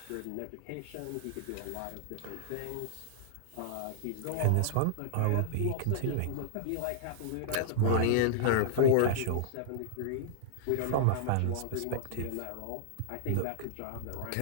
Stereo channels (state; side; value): different; both; correlation -0.01